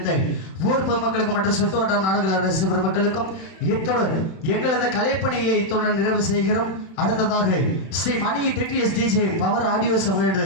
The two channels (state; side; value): late; right; 31 ms